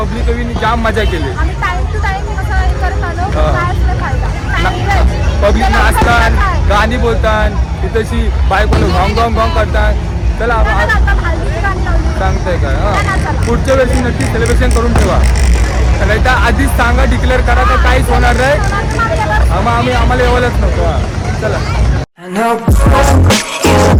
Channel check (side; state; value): both; identical; correlation 1.00